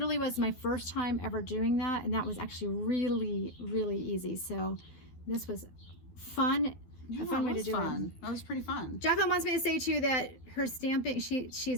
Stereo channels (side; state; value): right; late; 12 ms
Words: was my first time ever doing that, and that was actually really, really easy. So this was fun. Yeah, a fun way to do fun. it. That was pretty fun. Jacqueline wants me to say too that her stamping,